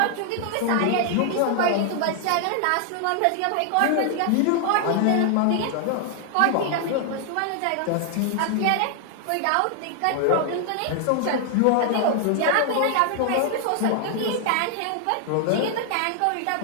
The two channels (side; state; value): both; different; correlation 0.00